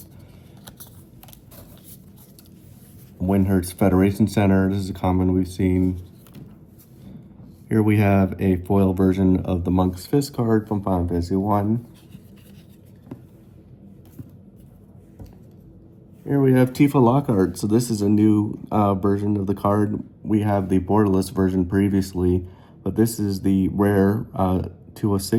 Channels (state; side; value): identical; both; correlation 1.00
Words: Windhurst Federation Center. This is a common we've seen. Here we have a foil version of the Monk's Fist card from Final Fantasy 1. Here we have Tifa Lockhart. So this is a new version of the card. We have the borderless version previously, but this is the rare